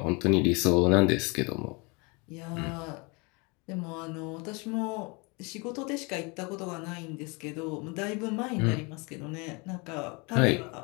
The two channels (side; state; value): right; quieter; 29.4 dB